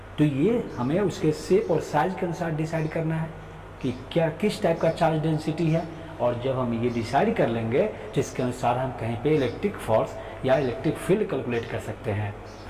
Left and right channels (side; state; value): both; identical; correlation 1.00